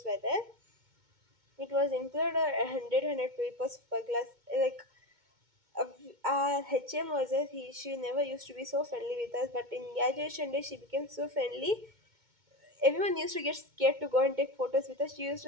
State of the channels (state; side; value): late; left; 2.2 ms